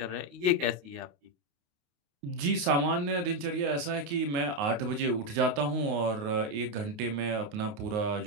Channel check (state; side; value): late; left; 29 ms